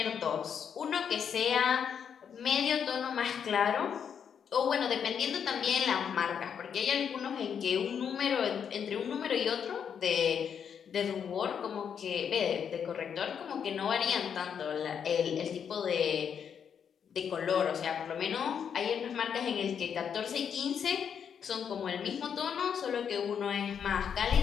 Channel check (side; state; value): right; quieter; 7.6 dB